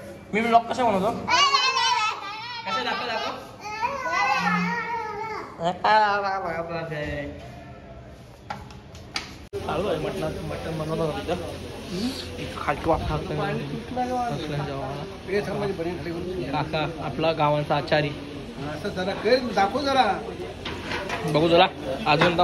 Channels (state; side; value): identical; both; correlation 1.00